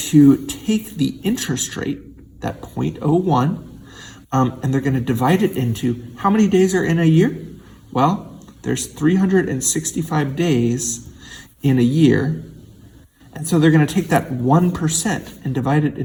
take the interest rate, that 0.01, and they're going to divide it into how many days are in a year? Well, there's 365 days in a year. And so they're going to take that 1% and divide it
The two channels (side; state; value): both; identical; correlation 1.00